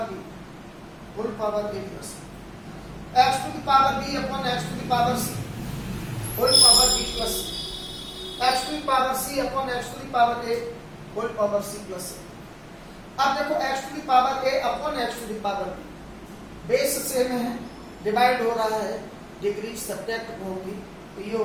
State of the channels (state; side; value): identical; both; correlation 1.00